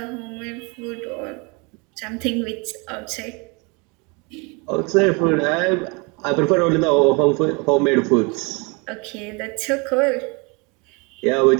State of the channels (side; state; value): left; quieter; 30.0 dB